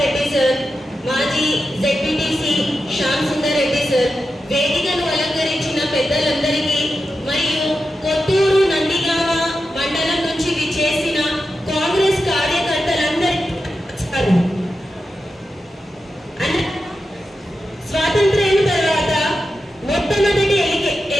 రెడ్డి సార్, మాజీ జెడ్పీటీసీ శ్యామ్ సుందర్ రెడ్డి సార్, వేదికను అలంకరించిన పెద్దలందరికీ మరియు కొత్తూరు నందిగామ మండలం నుంచి విచ్చేసిన కాంగ్రెస్ కార్యకర్తలందరికీ స్వాతంత్ర్యం తర్వాత మొట్టమొదటి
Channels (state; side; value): normal; both; correlation 0.90